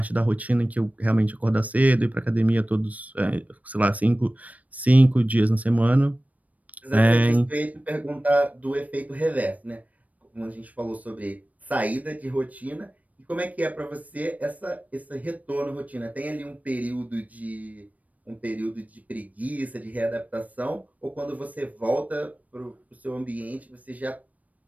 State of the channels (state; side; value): late; left; 0.071 ms